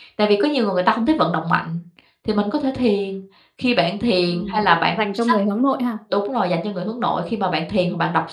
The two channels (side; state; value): both; identical; correlation 1.00